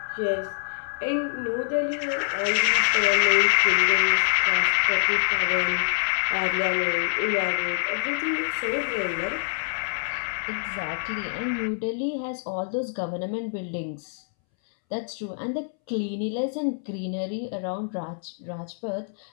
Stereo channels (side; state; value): right; silent; 61 dB below the other